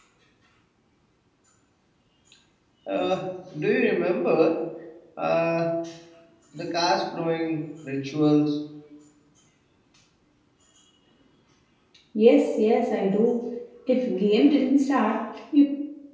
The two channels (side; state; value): both; identical; correlation 1.00